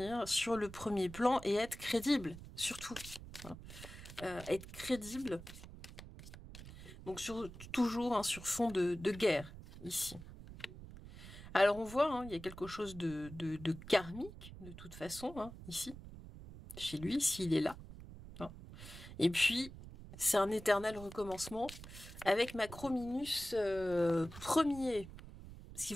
sur le premier plan et être crédible, surtout. Hein. Être crédible, donc toujours hein, sur fond de guerre, ici. Alors on voit, hein, il y a quelque chose de karmique, de toute façon, hein, ici, chez lui, s'il est là. Hein. Et puis, c'est un éternel recommencement avec Macrominus premier. Ce qui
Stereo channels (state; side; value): noise; right; rumble, 14 dB below the sound